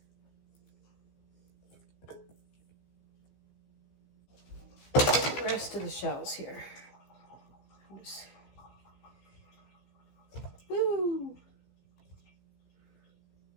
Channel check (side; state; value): right; late; 15 ms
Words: The rest of the shells here. Woo!